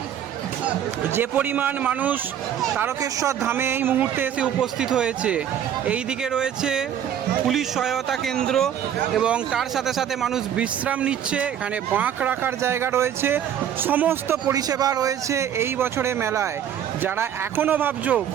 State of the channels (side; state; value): left; quieter; 9.6 dB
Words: যে পরিমাণ মানুষ তারকেশ্বর ধামে এই মুহূর্তে এসে উপস্থিত হয়েছে। এই দিকে রয়েছে পুলিশ সহায়তা কেন্দ্র এবং তার সাথে সাথে মানুষ বিশ্রাম নিচ্ছে। এখানে বাঁক রাখার জায়গা রয়েছে, সমস্ত পরিষেবা রয়েছে এই বছরে মেলায়। যারা এখনও ভাবছো